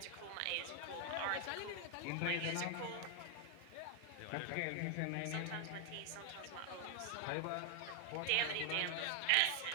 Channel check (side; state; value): both; different; correlation 0.00